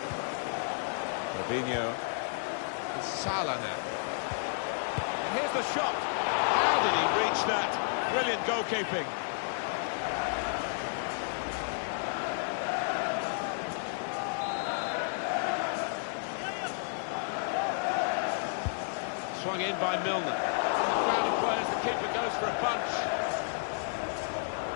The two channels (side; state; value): right; silent; 57 dB below the other